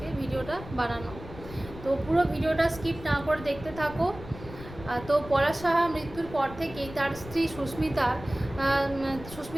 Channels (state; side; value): noise; left; rumble, 14 dB below the sound